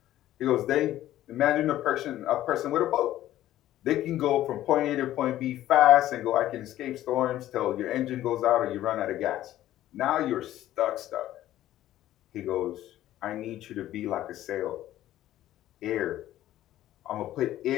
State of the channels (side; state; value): right; quieter; 13.7 dB